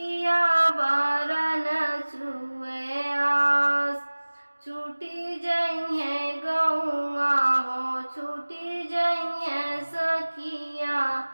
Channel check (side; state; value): both; inverted; correlation -1.00